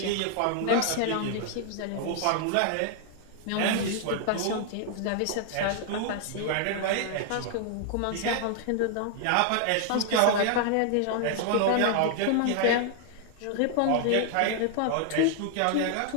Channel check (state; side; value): different; both; correlation 0.00